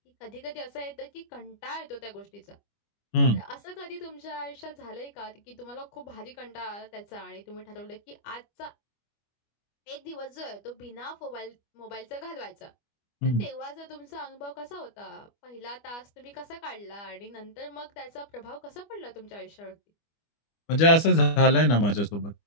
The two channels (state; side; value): late; right; 25 ms